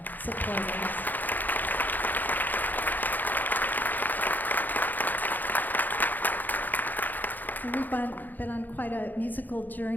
supporters. So we've been on quite a musical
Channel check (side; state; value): right; late; 0.085 ms